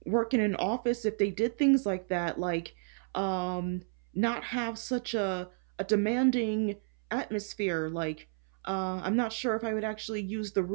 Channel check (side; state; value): left; silent; 57 dB below the other